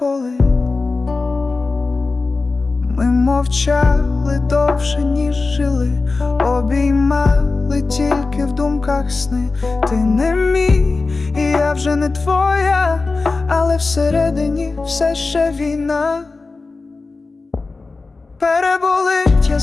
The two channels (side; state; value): right; quieter; 3.8 dB